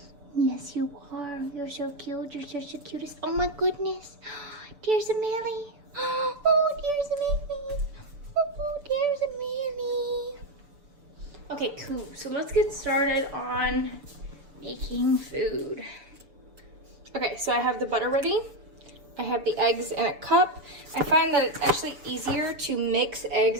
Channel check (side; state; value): left; late; 6.7 ms